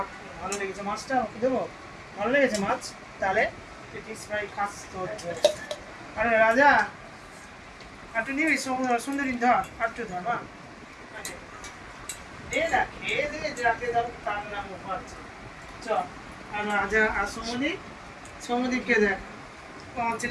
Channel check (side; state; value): both; identical; correlation 1.00